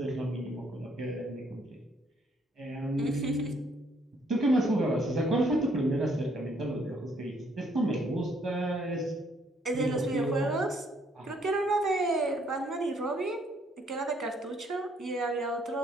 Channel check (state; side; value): normal; both; correlation 0.68